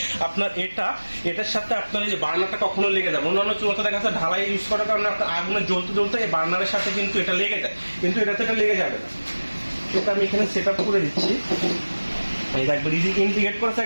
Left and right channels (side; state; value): both; inverted; correlation -1.00